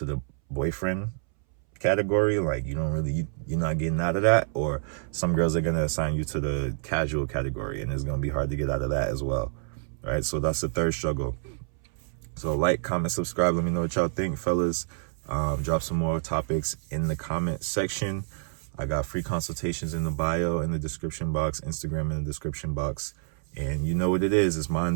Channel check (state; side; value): silent; left; 60 dB below the other